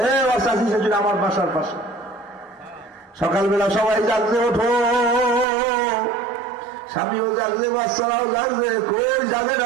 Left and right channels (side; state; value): left; drops out; at 5.5 s